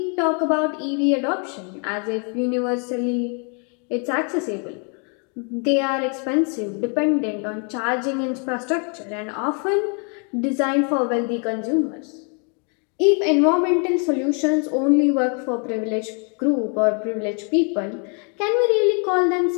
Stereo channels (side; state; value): right; quieter; 39.1 dB